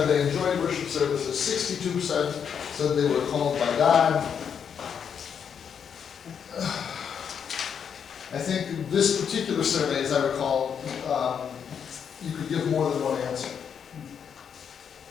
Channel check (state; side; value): quieter; right; 7.5 dB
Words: they enjoyed worship services. 62% said they were called by God. I think this particular survey, as I recall, you could give more than one answer.